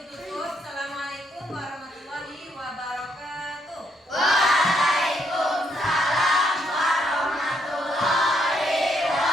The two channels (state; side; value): normal; both; correlation 0.74